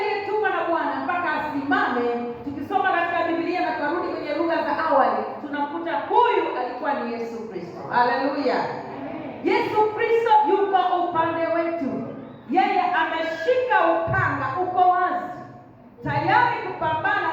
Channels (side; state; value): both; identical; correlation 1.00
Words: na Bwana mpaka asimame? Tukisoma katika Biblia na karudi kwenye lugha za awali, tunamkuta huyu alikuwa ni Yesu Kristo. Haleluya. Yesu Kristo yuko upande wetu. Yeye ameshika upanga, uko wazi, tayari kupambana